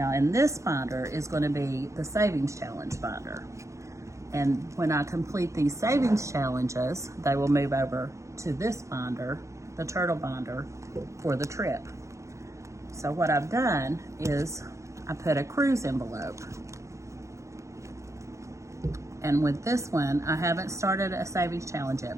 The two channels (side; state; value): left; late; 0.15 ms